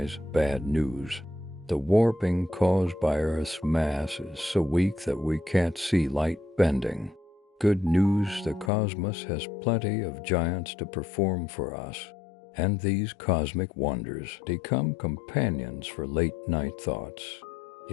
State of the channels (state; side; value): drops out; right; at 8.7 s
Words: Bad news. The warping caused by Earth's mass is so weak that we can't see light bending. Good news, the cosmos has plenty of giants to perform for us, and these cosmic wonders become companions for late-night thoughts.